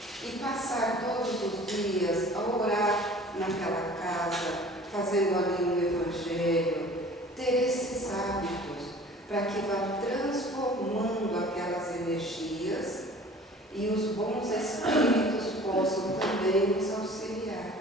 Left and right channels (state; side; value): normal; both; correlation 0.46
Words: E passar todos os dias a orar naquela casa, fazendo ali um Evangelho, ter esses hábitos para que vá transformando aquelas energias e os bons espíritos possam também nos auxiliar.